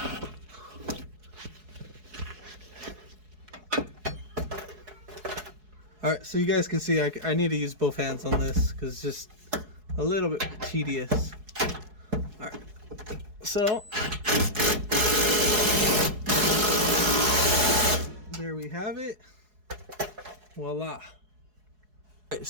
All right, so you guys can see I need to use both hands on this because it's just a little bit tedious. All right, so there we have it. Voila. All right,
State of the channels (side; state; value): left; late; 4.7 ms